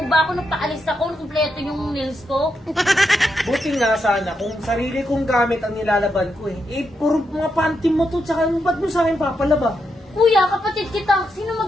ba ako? Nagpaalis ako, kumpleto yung nails ko. Buti nga sana kung sarili kong gamit ang nilalaban ko eh. Eh, puro mga panty mo to, tsaka ba't mo sa akin papalaba? Kuya, kapatid kita. Sino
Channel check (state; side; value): normal; both; correlation 0.83